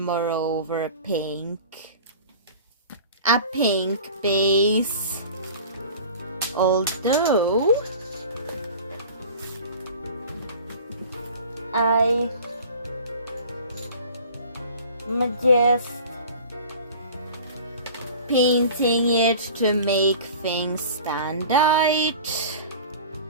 over pink. A pink base. Although I'm just painting it to make things stand out,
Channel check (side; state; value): both; inverted; correlation -0.41